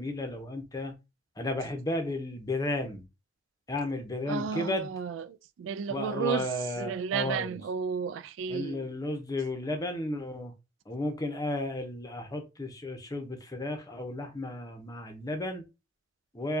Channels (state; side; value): normal; both; correlation 0.44